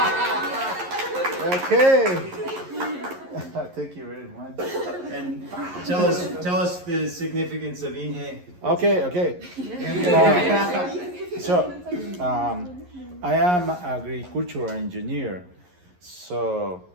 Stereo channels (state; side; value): late; left; 11 ms